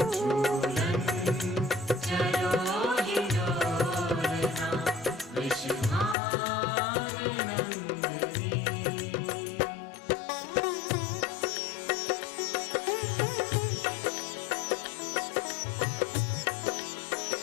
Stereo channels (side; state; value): right; drops out; at 6.2 s